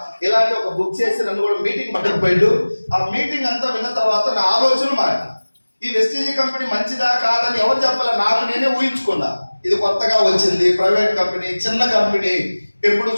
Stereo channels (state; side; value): inverted; both; correlation -1.00